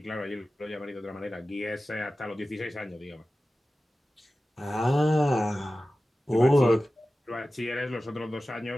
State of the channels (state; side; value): normal; both; correlation 0.95